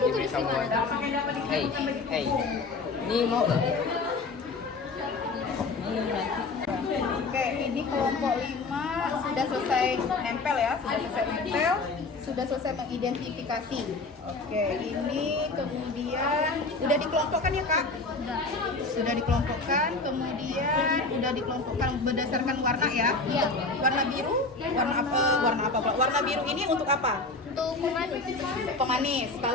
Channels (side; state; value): right; quieter; 3.6 dB